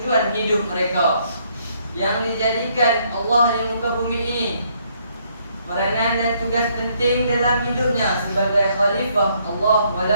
hidup mereka yang dijadikan Allah di muka bumi ini. Peranan dan tugas penting dalam hidupnya sebagai khalifah Allah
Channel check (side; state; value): both; inverted; correlation -0.70